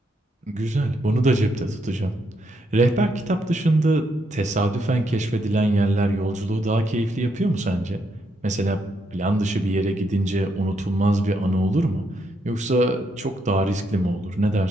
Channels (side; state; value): both; normal; correlation 0.77